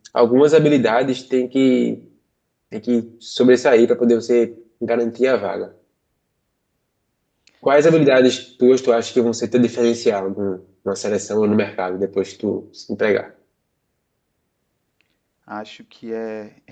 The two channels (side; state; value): both; identical; correlation 1.00